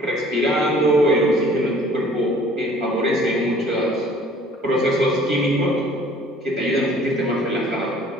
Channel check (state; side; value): normal; both; correlation 0.53